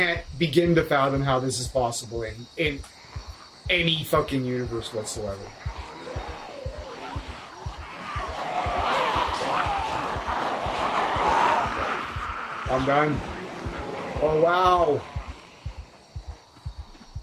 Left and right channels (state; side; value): identical; both; correlation 1.00